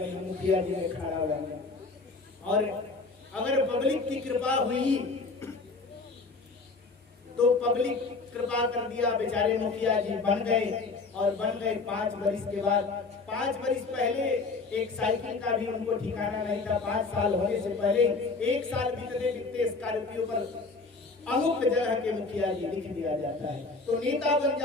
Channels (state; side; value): quieter; right; 3.9 dB